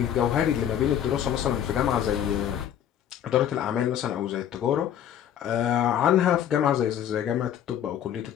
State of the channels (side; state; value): right; quieter; 10.0 dB